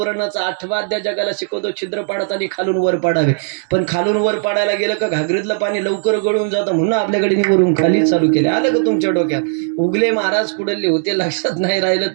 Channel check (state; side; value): silent; left; 67 dB below the other